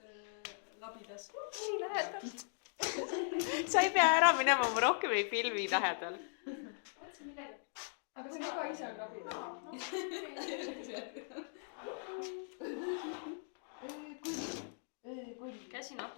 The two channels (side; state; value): right; silent; digital silence